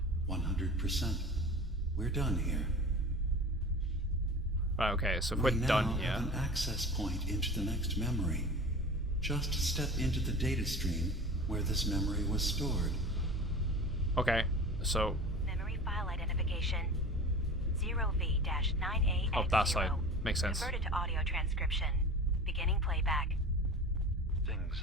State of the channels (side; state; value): both; normal; correlation 0.37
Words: 100%. We're done here. Right, okay, so if we're done here. Have an access point into the next memory. Just step into the data stream where this memory was stored. Okay, so... Memory file identification 0V-9AX0. Oh, that side. Makes sense. Converted to audio transcription. Beginning playback. Things